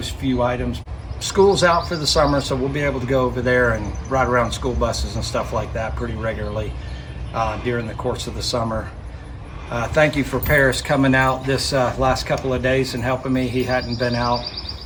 few items. School's out for the summer, so we'll be able to go over there and ride around school buses and stuff like that pretty regularly during the course of the summer. Thank you for Paris coming out this last couple of days and helping me. He hadn't been out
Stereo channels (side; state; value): both; identical; correlation 1.00